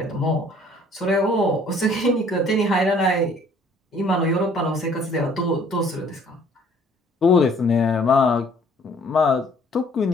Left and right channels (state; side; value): normal; both; correlation 0.58